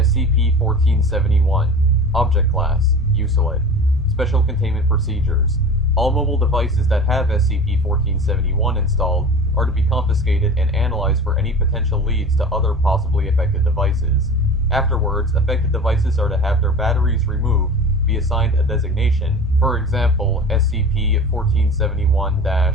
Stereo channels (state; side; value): normal; both; correlation 0.36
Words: SCP-1471 Object Class Uselid Special Containment Procedures. All mobile devices that have SCP-1471 installed are to be confiscated and analyzed for any potential leads to other possibly affected devices. Afterwards, affected devices are to have their batteries removed, be assigned a designation, for example,